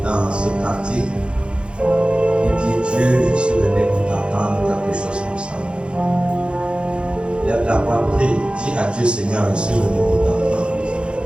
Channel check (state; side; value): late; left; 0.056 ms